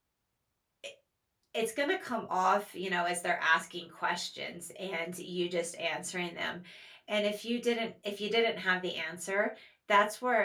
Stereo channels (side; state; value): both; identical; correlation 1.00